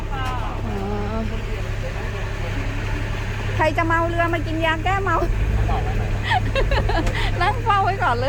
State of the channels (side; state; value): both; identical; correlation 1.00